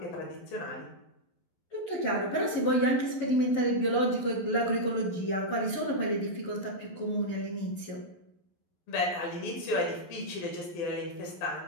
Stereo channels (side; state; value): right; late; 12 ms